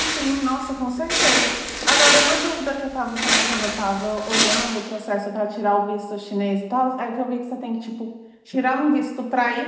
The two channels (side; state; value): both; identical; correlation 1.00